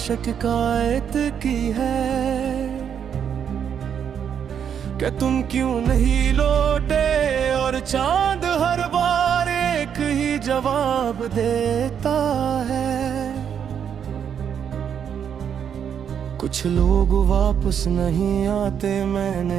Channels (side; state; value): left; quieter; 8.1 dB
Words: की है कि तुम क्यों नहीं लौटे, और चांद हर बार एक ही जवाब देता है। कुछ लोग वापस नहीं आते,